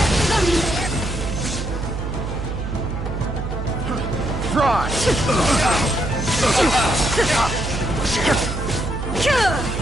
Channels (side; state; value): right; noise; hum, 4 dB below the sound